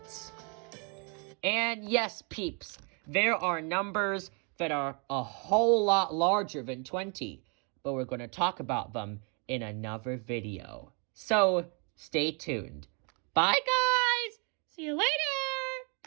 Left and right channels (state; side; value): quieter; left; 35.7 dB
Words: And yes, peeps, there are numbers that are a whole lot larger than 20, but we're going to talk about them in another video. So, stay tuned. Bye, guys! See you later!